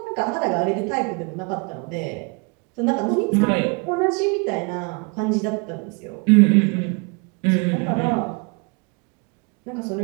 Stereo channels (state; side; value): quieter; left; 32.0 dB